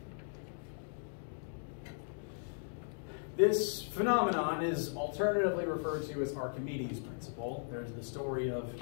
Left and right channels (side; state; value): right; silent; digital silence